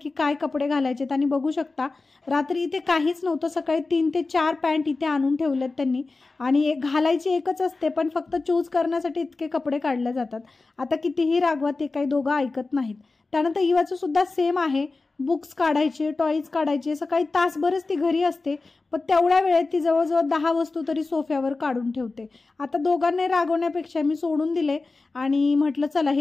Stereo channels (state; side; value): quieter; right; 3.6 dB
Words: काय कपडे घालायचे। त्यांनी बघू शकता रात्री इथे काहीच नव्हतं, सकाळी 3 ते 4 पॅन्ट इथे आणून ठेवलेत त्यांनी आणि एक घालायची एकच असते, पण फक्त चूज करण्यासाठी इतके कपडे काढले जातात। आता कितीही रागवा ते काही दोघं ऐकत नाहीत। त्यानंतर इवाचं सुद्धा सेम आहे, बुक्स काढायचे, टॉयज काढायचे। सकाळी तासभरच ती घरी असते, पण तेवढ्या वेळेत ती जवळजवळ 10 वस्तू तरी सोफ्यावर काढून ठेवते। आता दोघांना रागवण्यापेक्षा मी सोडून दिले आणि म्हटलं चला